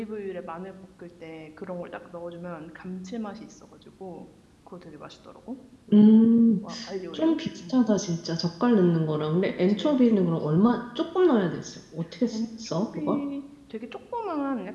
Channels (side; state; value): both; identical; correlation 1.00